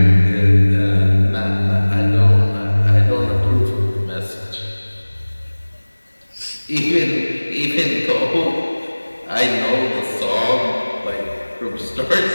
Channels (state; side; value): inverted; both; correlation -1.00